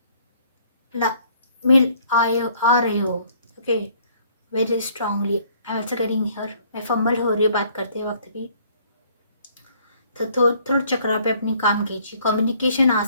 मिल आ रहे हो। Okay, very strongly. I am also getting here, मैं फंबल हो रही हूँ बात करते वक्त भी, तो थोड़ा चक्रा पे अपनी काम कीजिए। कम्युनिकेशन आ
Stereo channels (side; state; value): both; inverted; correlation -0.60